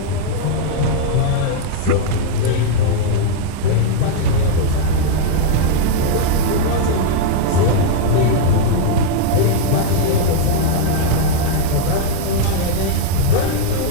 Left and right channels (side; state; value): both; different; correlation -0.01